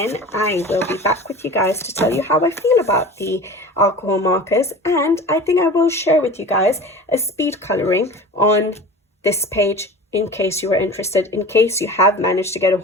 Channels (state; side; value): normal; both; correlation 0.37